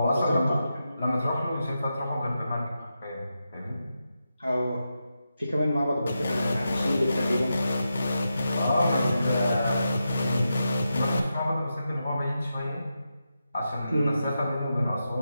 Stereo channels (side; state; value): both; inverted; correlation -0.88